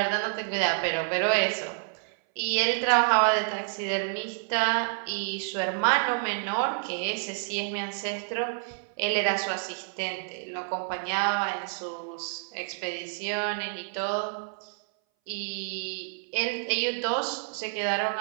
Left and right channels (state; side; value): silent; left; 59 dB below the other